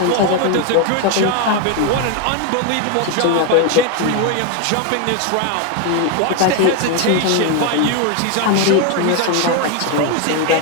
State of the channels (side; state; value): both; different; correlation 0.01